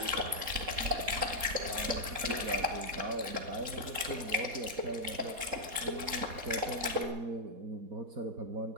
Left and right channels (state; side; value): late; left; 4.2 ms